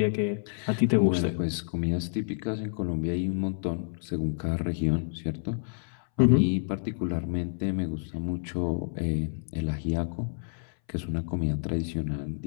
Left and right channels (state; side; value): silent; right; 59 dB below the other